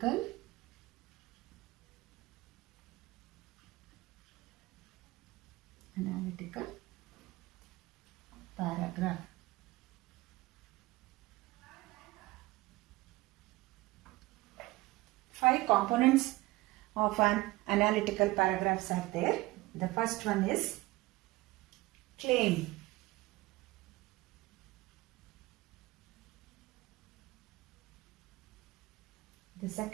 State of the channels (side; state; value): left; quieter; 20.3 dB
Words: paragraph. Five components of an analytical paragraphs are there. The first one is claim. The